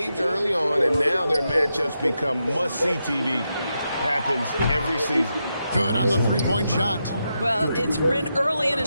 early on, and now their matchups become must-see TV. Happens every season. Good on the three-point shot. Well, it's been early in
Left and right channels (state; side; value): inverted; both; correlation -0.86